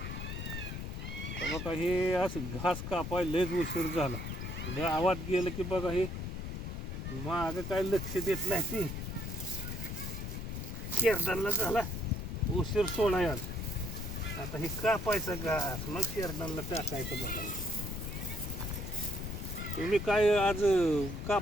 तर बघा हे असं घास कापाय लयच उशीर झाला. गावात गेलं की बघा हे मागं काय लक्ष देत नाही ती शेरडांना झाला उशीर सोडाय आज. आता हे कापायचं घास मग शेरडांना टाकायचं. बघा तुम्ही काय आज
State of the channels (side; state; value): left; noise; rumble, 5 dB below the sound